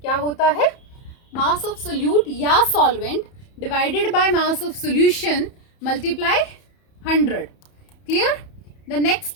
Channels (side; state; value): right; late; 31 ms